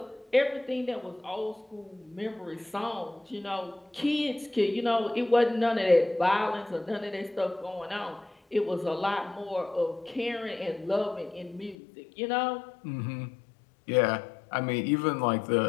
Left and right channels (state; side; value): drops out; right; at 11.8 s